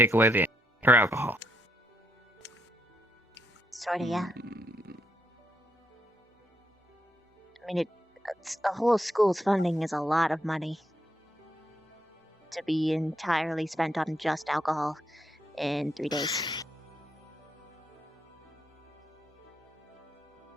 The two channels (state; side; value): normal; both; correlation 0.78